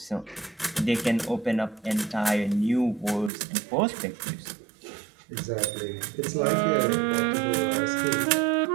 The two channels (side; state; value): left; drops out; at 3.3 s